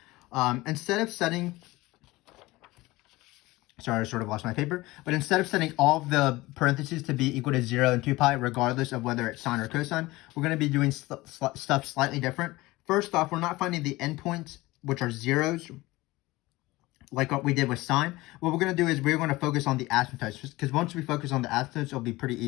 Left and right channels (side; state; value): right; quieter; 19.9 dB